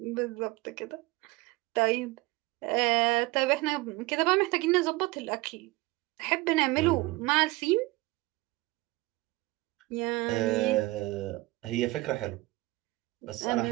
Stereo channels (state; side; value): quieter; left; 21.5 dB